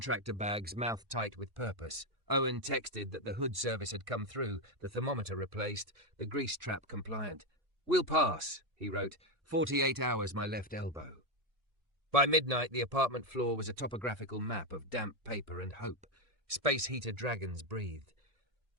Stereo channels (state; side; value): late; left; 1.6 ms